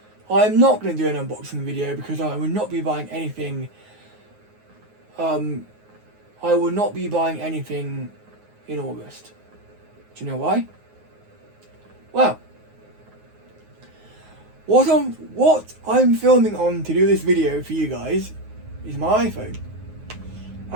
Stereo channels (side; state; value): left; late; 9.5 ms